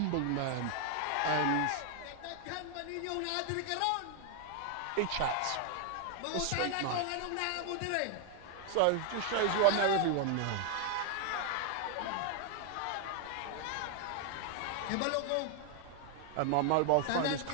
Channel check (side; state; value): both; different; correlation 0.00